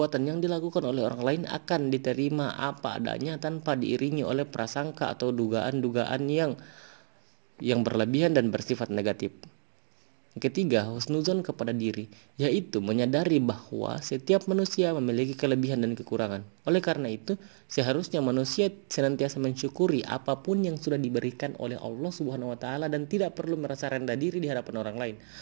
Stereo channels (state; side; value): silent; left; digital silence